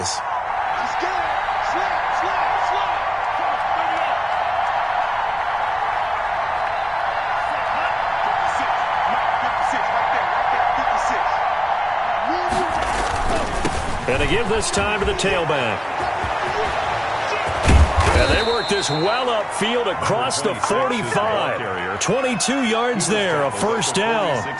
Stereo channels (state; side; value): identical; both; correlation 1.00